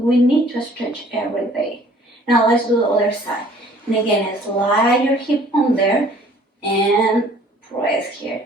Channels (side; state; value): both; normal; correlation 0.55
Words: need to stretch every day. Now let's do the other side. And again, slide your hip on there and press here.